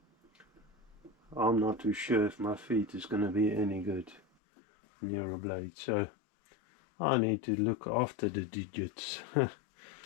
not too sure if my feet is going to be any good near a blade. So I need to look after the digits.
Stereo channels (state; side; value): drops out; right; at 4.2 s